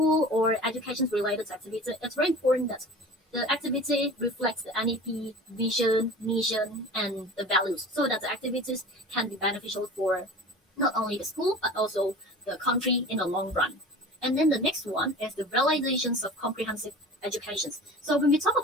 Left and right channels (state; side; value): normal; both; correlation 0.38